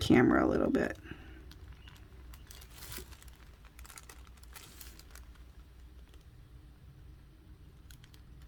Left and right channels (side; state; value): both; identical; correlation 1.00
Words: a little bit.